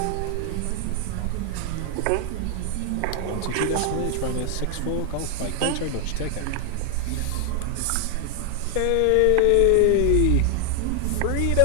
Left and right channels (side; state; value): both; different; correlation 0.00